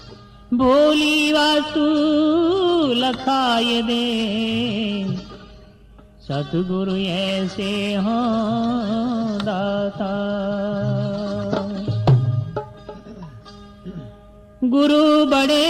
भोली वास्तु लखाए दे सतगुरु ऐसे हों दाता। गुरु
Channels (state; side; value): identical; both; correlation 1.00